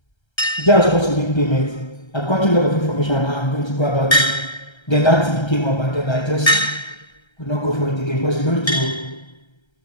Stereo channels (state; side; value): late; right; 1.3 ms